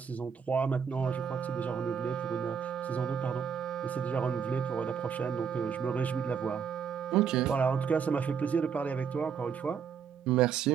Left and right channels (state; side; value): quieter; left; 6.9 dB